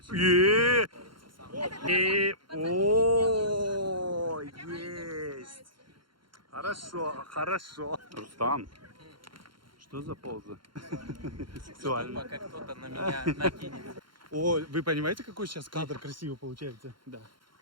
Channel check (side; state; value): left; late; 0.73 ms